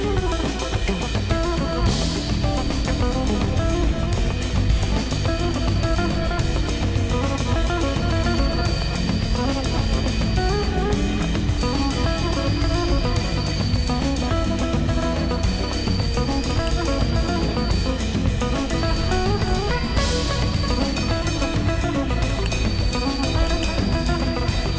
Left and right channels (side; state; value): both; identical; correlation 1.00